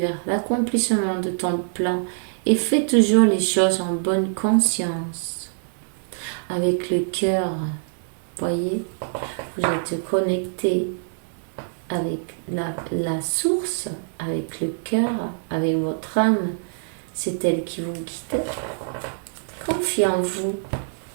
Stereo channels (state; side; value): silent; left; digital silence